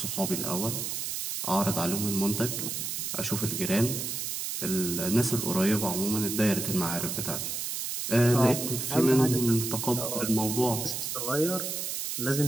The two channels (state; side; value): noise; right; hiss, 3 dB below the sound